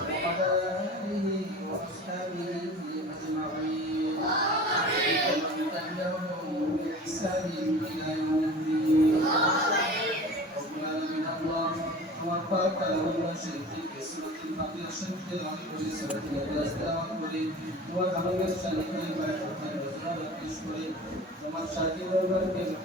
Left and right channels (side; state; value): both; normal; correlation 0.38